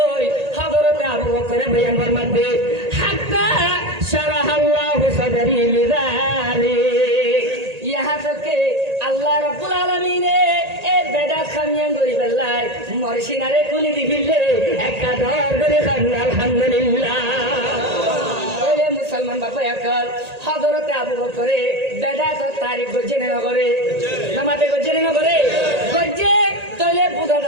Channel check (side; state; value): left; late; 1.8 ms